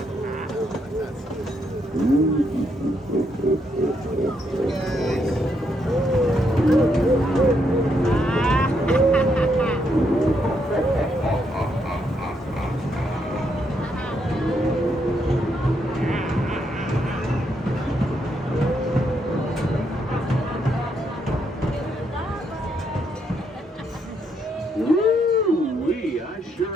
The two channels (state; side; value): normal; both; correlation 0.77